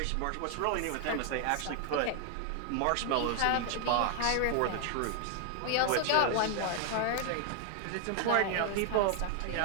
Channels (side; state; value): both; different; correlation 0.00